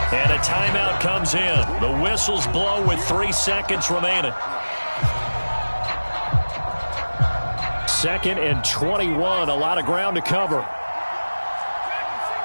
And a timeout comes in. The whistles blow with 3 seconds remaining. 2nd and 21. A lot of ground to cover.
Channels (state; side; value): inverted; both; correlation -1.00